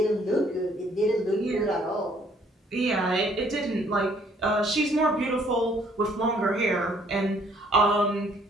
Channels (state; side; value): normal; both; correlation 0.62